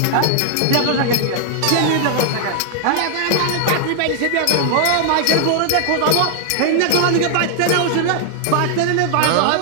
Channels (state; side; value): different; both; correlation 0.00